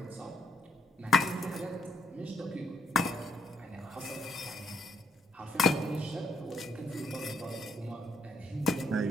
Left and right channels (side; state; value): both; normal; correlation 0.69